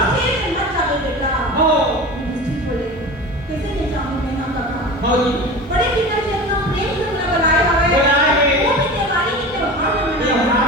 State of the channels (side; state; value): both; normal; correlation 0.32